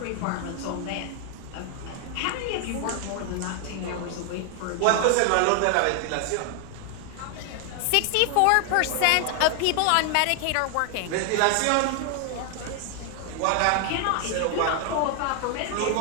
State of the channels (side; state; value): both; different; correlation 0.00